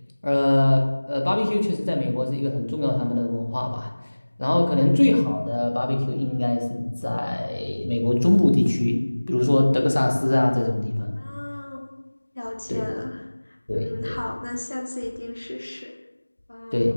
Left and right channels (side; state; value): both; inverted; correlation -1.00